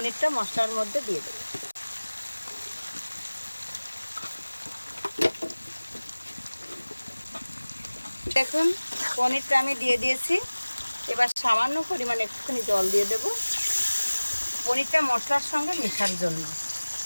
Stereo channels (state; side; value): inverted; both; correlation -1.00